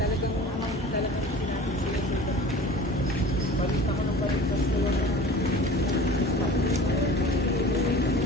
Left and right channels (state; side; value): normal; both; correlation 0.41